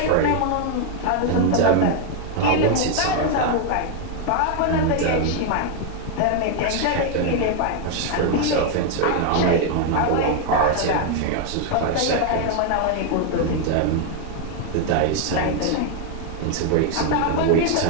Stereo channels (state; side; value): different; both; correlation 0.00